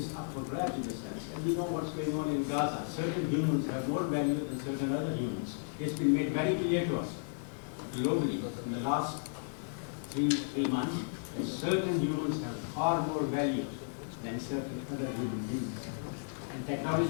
up for grabs in a sense. And we know what's going on in Gaza. Certain humans have more value than certain other humans. It's been made very clear to us globally in the last three months that certain humans have far more value than certain other human beings. And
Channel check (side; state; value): right; silent; digital silence